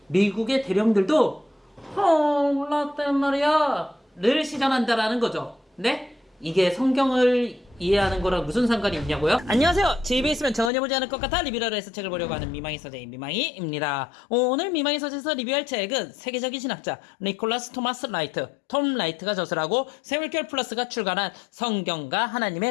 미국의 대령들도 라떼 말이야 를 시전한다라는 거죠. 네? 이게 성경을 이해하는 거랑 무슨 상관이 있냐고요? 안녕하세요. 제 입에 있으면 전혀 보지 않을 것 같아 리뷰를 해서 책을 보려고 하는 미망이 서재인 미망이입니다. 오늘 미망이 서재에서 리뷰할 책은 세계적인 신학자 니콜라스 토마스 라이트, 톰 라이트가 저술하고 세물결 플러스가 출간한 성경과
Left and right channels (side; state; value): right; drops out; at 10.7 s